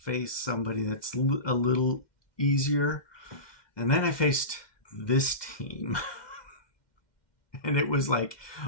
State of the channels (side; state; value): right; late; 2.1 ms